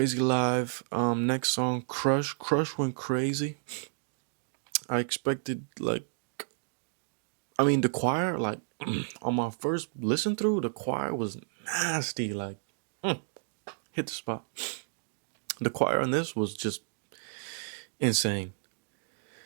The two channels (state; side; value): silent; left; digital silence